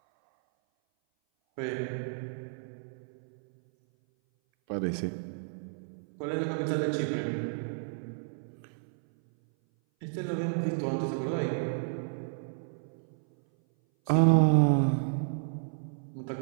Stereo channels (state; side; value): silent; left; 57 dB below the other